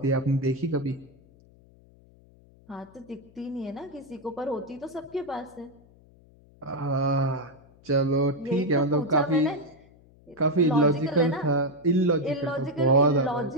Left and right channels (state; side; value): noise; left; hum, 27 dB below the sound